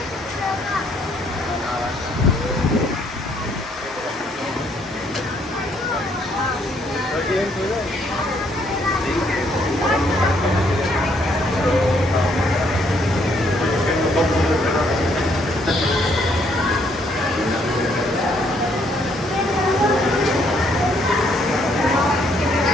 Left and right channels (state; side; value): normal; both; correlation 0.69